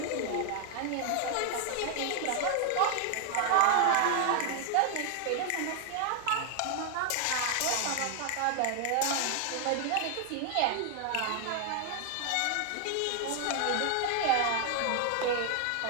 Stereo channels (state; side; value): different; both; correlation 0.00